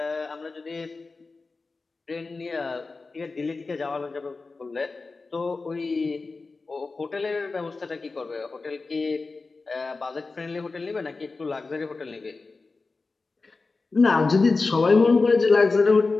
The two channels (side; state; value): right; quieter; 3.9 dB